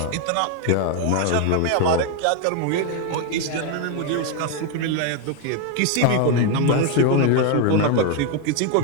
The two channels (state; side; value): different; both; correlation 0.01